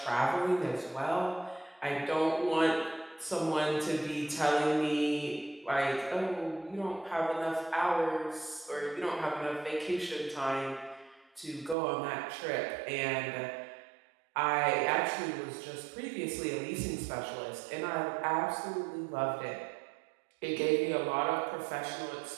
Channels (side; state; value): left; drops out; at 11.8 s